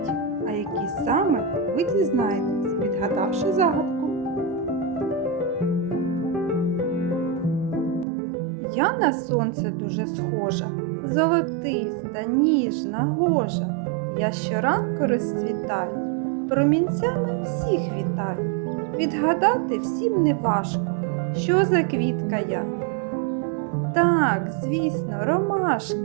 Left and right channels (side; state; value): left; drops out; at 8.1 s